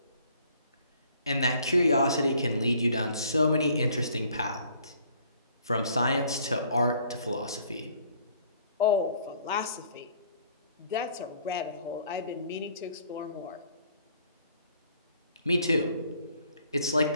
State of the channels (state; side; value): inverted; both; correlation -0.60